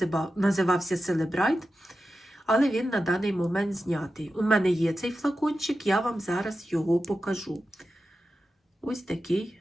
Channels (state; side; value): normal; both; correlation 0.92